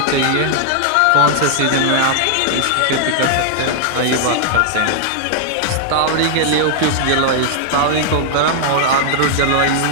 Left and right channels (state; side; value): different; both; correlation -0.01